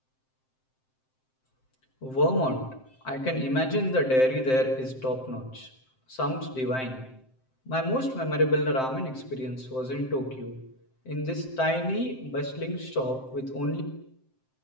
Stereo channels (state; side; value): late; right; 7.7 ms